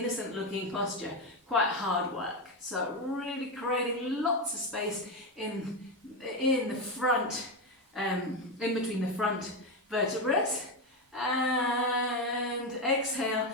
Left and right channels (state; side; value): normal; both; correlation 0.12